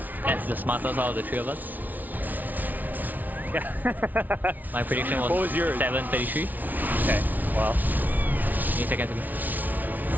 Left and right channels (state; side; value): late; left; 0.080 ms